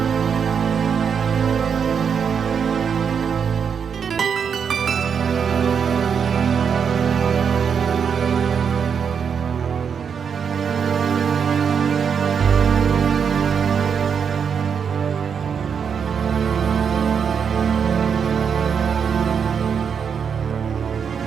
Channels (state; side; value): quieter; left; 6.9 dB